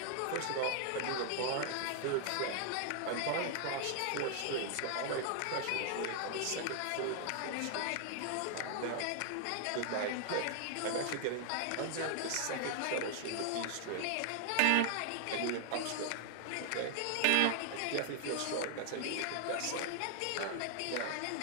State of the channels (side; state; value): both; different; correlation 0.00